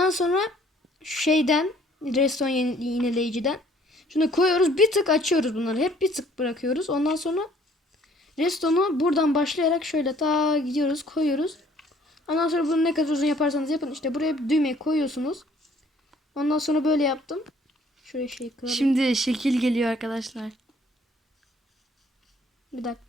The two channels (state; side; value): normal; both; correlation 0.59